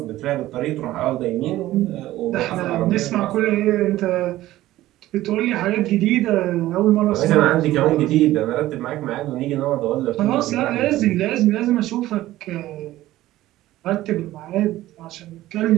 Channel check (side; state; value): left; quieter; 15.5 dB